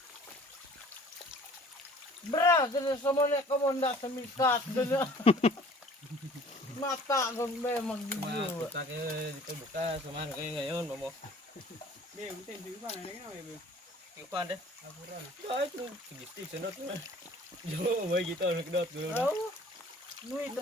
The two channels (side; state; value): both; normal; correlation 0.51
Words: Bra, gana sa mga komanda sa miskas gana. Mata kung may mag-video. Kita kita buka sama kayak ngayon, Mamo. Be, butin di pa na nginaw be. Ipan deh. Apuran. Ya itu segitu senot. Yo, may kita nak dot gue. Bro, nuit